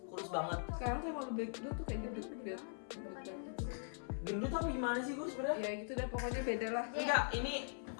Kurus banget. sekarang tuh emang lebih lu tuh kayak gendut gitu. bukan gendut sih. Gendut apa gimana sih gue sebenarnya? Ya gitu dah pokoknya beda lah. Enggak, ini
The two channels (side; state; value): right; silent; 50 dB below the other